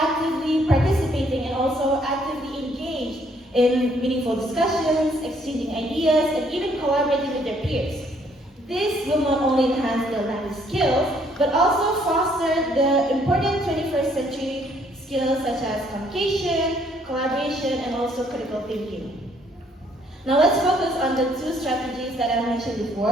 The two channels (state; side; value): normal; both; correlation 0.66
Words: participating and also actively engaged in meaningful discussions, exchanging ideas, and even collaborating with their peers. This will not only enhance their language skills, but also foster the important 21st century skills such as communication, collaboration, and also critical thinking. Now let's focus on the two strategies that I mentioned